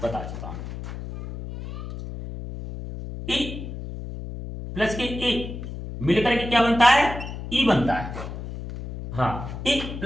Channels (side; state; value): left; noise; hum, 9 dB below the sound